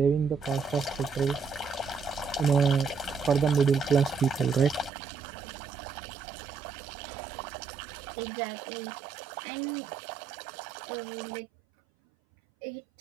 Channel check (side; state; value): left; drops out; at 4.9 s